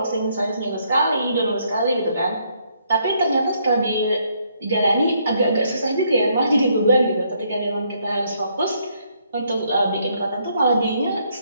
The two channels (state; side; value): inverted; both; correlation -0.71